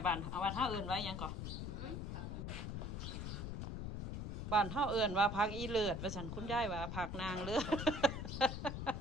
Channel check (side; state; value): left; noise; rumble, 4 dB below the sound